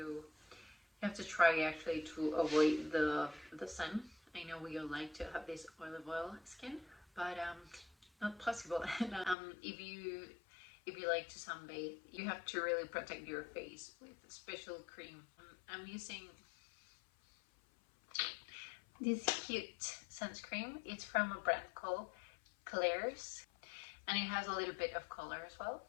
try actually to avoid the sun. I know we all like to have this olive oil skin, but not possible. If you like to sunbathe, you have to really protect your face with special cream. I'm using this cute sunscreen. It's from a brand called Klairs, and it has a little bit of color as well.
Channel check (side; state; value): right; drops out; at 9.3 s